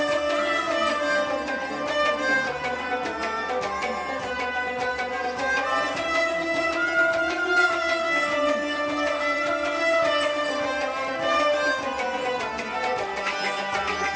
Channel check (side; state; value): both; identical; correlation 1.00